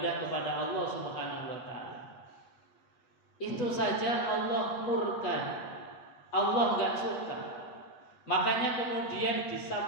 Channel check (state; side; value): late; right; 8.2 ms